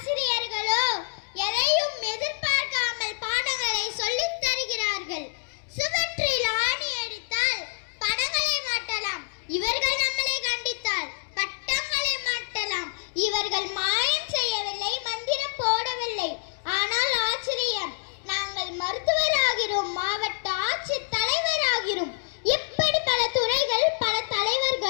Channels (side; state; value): right; silent; digital silence